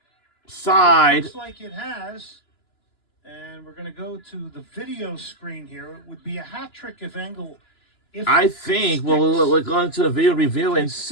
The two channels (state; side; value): late; right; 2.9 ms